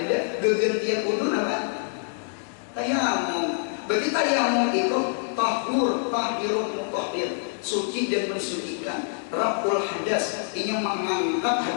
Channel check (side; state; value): right; silent; 61 dB below the other